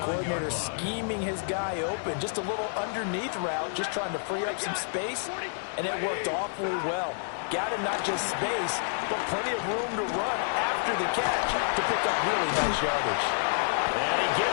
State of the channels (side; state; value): right; silent; digital silence